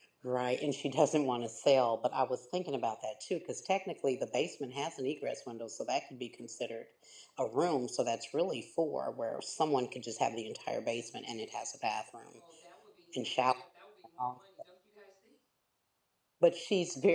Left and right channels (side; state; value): both; identical; correlation 1.00